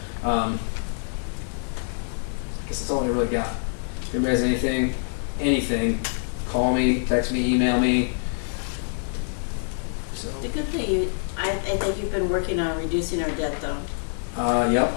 I guess that's all I really got. If anybody has anything, call me, text me, email me. So. The good thing, I think you've been working on reducing our debt though. Yep,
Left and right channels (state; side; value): silent; right; 60 dB below the other